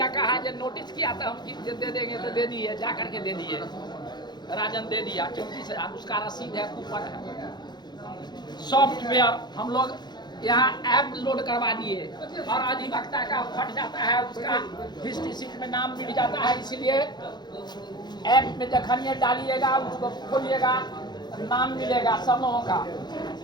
का है, जो नोटिस किया था हम दे देंगे तो दे दिए, जा करके दे दिए, राजन दे दिया 34,000, उसका रसीद है, कूपन है। सॉफ्टवेयर हम लोग यहाँ ऐप लोड करवा दिए, हर अधिवक्ता का फट जाता है, उसका हिस्ट्री शीट में नाम मिल जाता है, इसलिए ऐप में जखनिए डालिएगा, उसको खोलिएगा, नाम मिलेगा सब लोगों का।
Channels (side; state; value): right; late; 0.21 ms